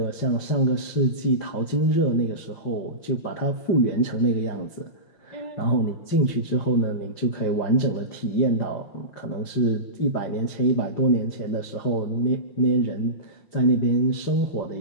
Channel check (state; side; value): late; right; 5.6 ms